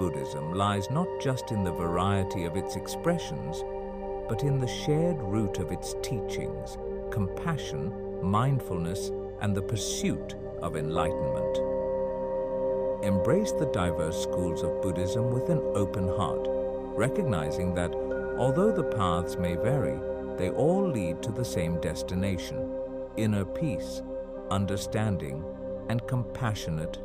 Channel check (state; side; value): identical; both; correlation 1.00